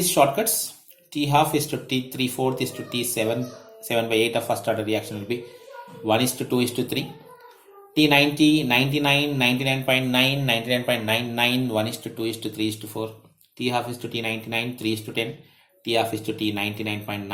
shortcuts. T half is to T 3/4 is to T 7 by 8 of first order reaction will be 1 is to 2 is to 3. T90, 99, 99.9, 99.99, 1 is to 2 is to 3 is to 4. T half is to T99, 3 is to 10. T half is to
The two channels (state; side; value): identical; both; correlation 1.00